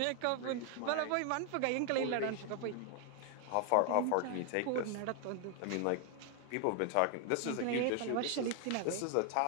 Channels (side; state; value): both; different; correlation 0.00